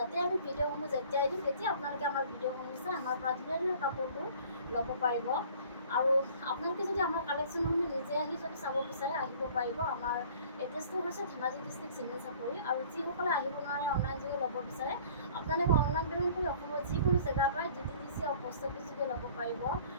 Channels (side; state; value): both; inverted; correlation -0.51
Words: আমি ভিডিঅ'সমূহ যেতিয়াই দিম তেতিয়া আপোনালোকে আমাৰ ভিডিঅ'সমূহ চাই আমাৰ পৰা ধুনীয়া কাপোৰবোৰ ল'ব পাৰিব আৰু আপোনালোকে যদি আমাৰ কালেকশ্যনসমূহ নিজে আহি যদি চাব বিচাৰে আহিব পাৰিব। আমাৰ এড্ৰেছটো হৈছে ধেমাজি ডিষ্ট্ৰিক্ট চিমেণ্ট চাপৰি আৰু যিসকলে আহিব নোৱাৰে অনলাইন যোগে ল'ব বিচাৰে আপোনালোকে অনলাইন পে'মেণ্ট কৰি অসমৰ যিকোনো জেগাৰ পৰা DTDC আৰু পোষ্ট অফিচ যোগে ল'ব পাৰিব